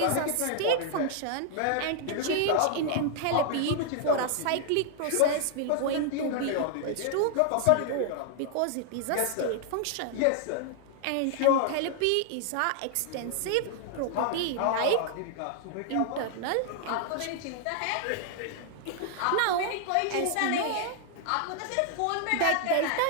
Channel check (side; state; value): both; different; correlation 0.00